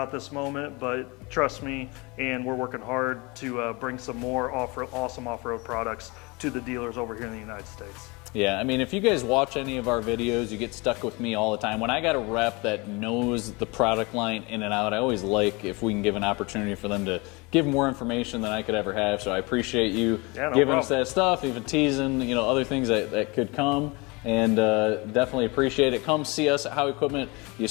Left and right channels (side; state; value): right; quieter; 26.7 dB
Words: at this moment, but trust me, and we're working hard to bring some more awesome off-road products to the dealers over here in the United States. Yeah, I mean, if you guys watch any of our videos, you get stuck with me all the time. When I got a rep that knows the product line in and out, I always like if we can give an opportunity for them to give more information than I could ever have. So I appreciate you giving us that stuff, even teasing, you know, other things that could come. And definitely appreciate it. Come see us at Howe Equipment. You